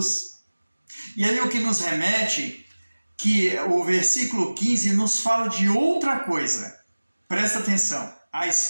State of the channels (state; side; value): inverted; both; correlation -1.00